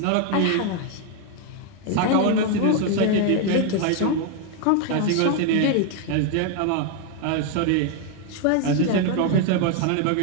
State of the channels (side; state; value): both; different; correlation 0.01